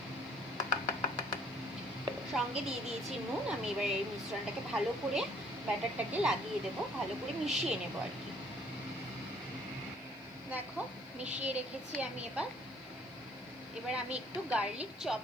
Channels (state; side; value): noise; left; hiss, 29 dB below the sound